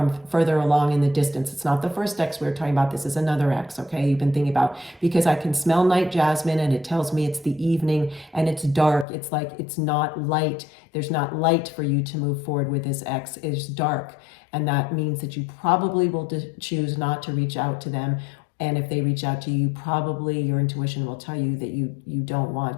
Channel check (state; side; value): drops out; right; at 9.1 s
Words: further along in the distance. It's not the first ex we were talking about. This is another ex, okay, you've been thinking about, because I can smell night jasmine and it tells me it's the evening and it's dark. It's like, it's not light. There's not light for you to move forward with this ex. It's dark. And that means that you probably will choose not to reach out to them. And if they reach out to you, probably your intuition will tell you that you don't